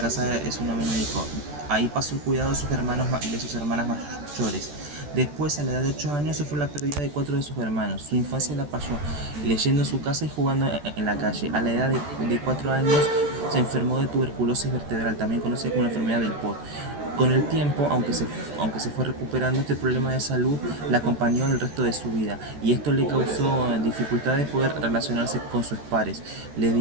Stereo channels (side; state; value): left; late; 14 ms